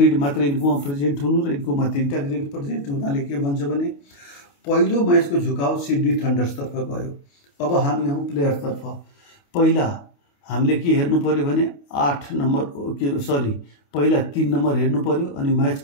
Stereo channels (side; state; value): right; late; 28 ms